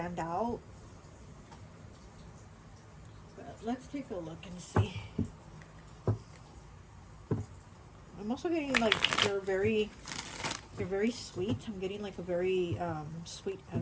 out. But let's take a look and see. I'm also getting like you're very sweet. I'm getting like a very sweet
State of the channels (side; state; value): both; identical; correlation 1.00